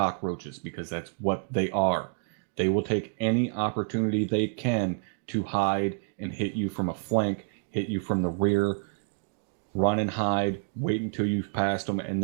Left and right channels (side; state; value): left; silent; 58 dB below the other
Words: because that's what they are. They will take any opportunity they can to hide and hit you from a flank, hit you from the rear, run and hide, wait until you've passed them, and